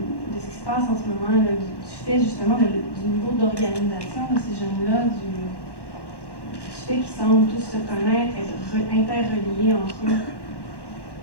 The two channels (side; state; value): right; late; 1.1 ms